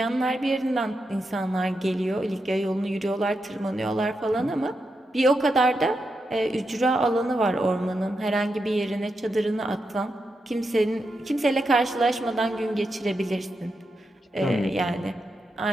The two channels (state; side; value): normal; both; correlation 0.86